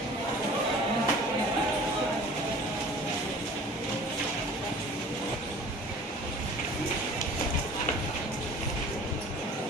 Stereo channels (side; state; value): both; normal; correlation 0.45